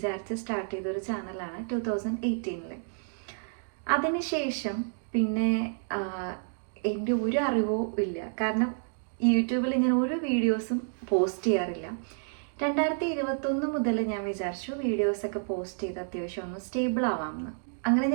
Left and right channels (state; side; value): silent; left; digital silence